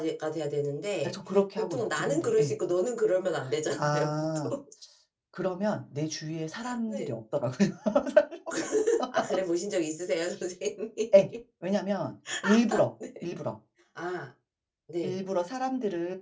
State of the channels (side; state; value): both; identical; correlation 1.00